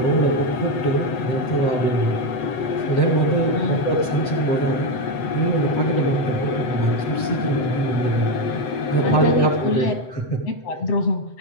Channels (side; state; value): right; late; 7.8 ms